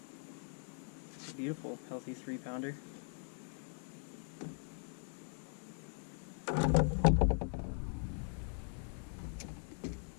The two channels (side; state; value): right; silent; 51 dB below the other